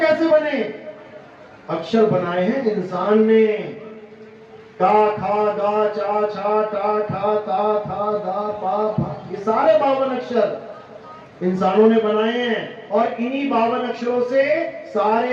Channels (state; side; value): identical; both; correlation 1.00